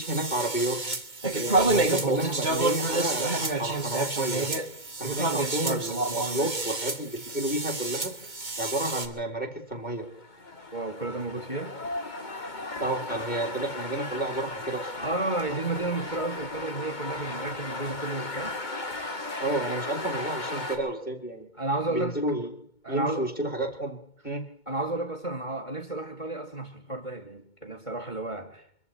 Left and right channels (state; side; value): late; right; 2.2 ms